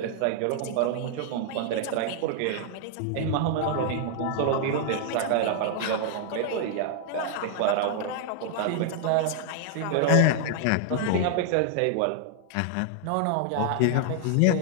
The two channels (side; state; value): both; different; correlation 0.00